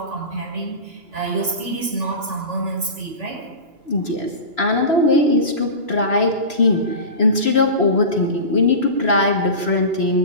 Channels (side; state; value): left; late; 2.9 ms